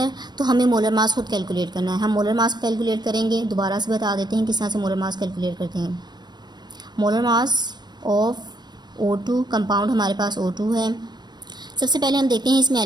तो हमें मोलर मास खुद कैलकुलेट करना है। हम मोलर मास कैलकुलेट करेंगे। दोबारा से बता देते हैं किस तरह से मोलर मास कैलकुलेट करते हैं। Molar mass of O2, compound हमारे पास O2 है। सबसे पहले हम देखते हैं इसमें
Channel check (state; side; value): late; left; 0.21 ms